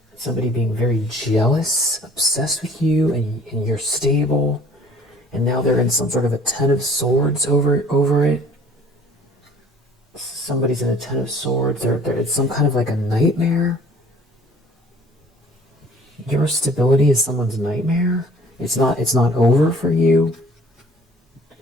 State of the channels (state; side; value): normal; both; correlation 0.52